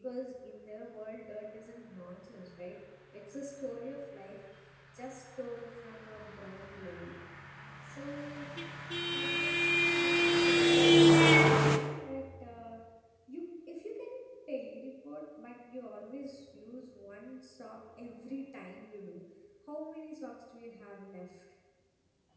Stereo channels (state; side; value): identical; both; correlation 1.00